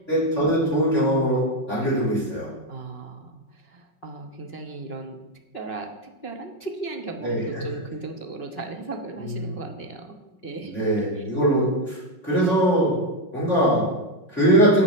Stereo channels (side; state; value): right; late; 5.4 ms